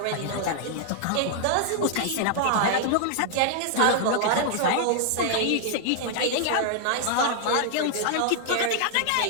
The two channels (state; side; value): different; both; correlation -0.01